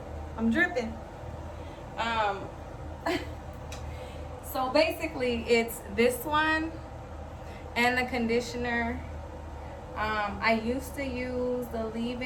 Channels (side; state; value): both; identical; correlation 1.00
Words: I'm dripping. So basically it's this one and the conditioner. I used to use the